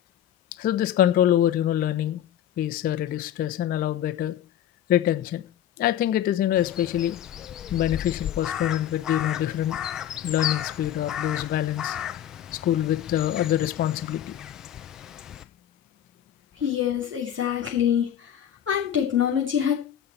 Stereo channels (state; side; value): quieter; right; 10.8 dB